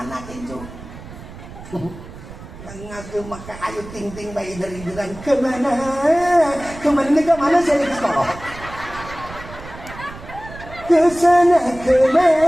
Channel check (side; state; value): right; noise; rumble, 15 dB below the sound